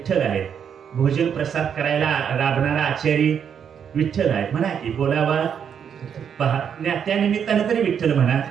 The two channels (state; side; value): quieter; left; 7.9 dB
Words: आहे, भोजन प्रसाद करायला राबणारा आचारी विठ्ठल आहे. म्हणा की बोलावा पहा, त्या निमित्तानं तरी विठ्ठल म्हणा.